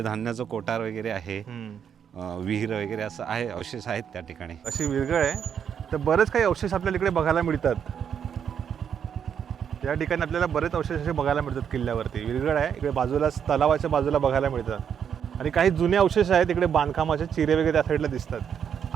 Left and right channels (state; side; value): quieter; left; 8.0 dB